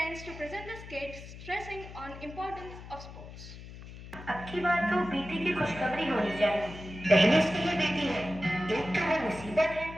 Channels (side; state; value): left; noise; hum, 14 dB below the sound